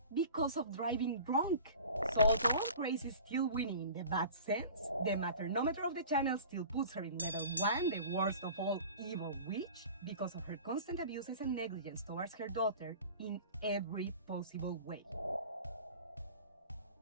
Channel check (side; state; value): both; inverted; correlation -0.41